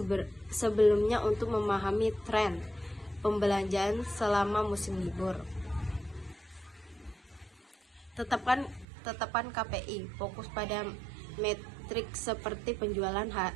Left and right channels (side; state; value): left; drops out; at 8.8 s